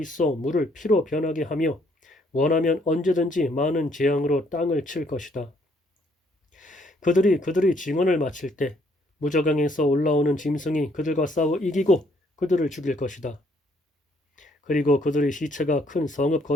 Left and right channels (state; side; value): normal; both; correlation 0.67